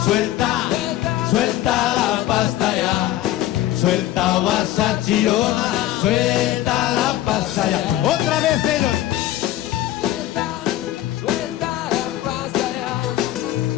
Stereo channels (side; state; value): right; quieter; 14.1 dB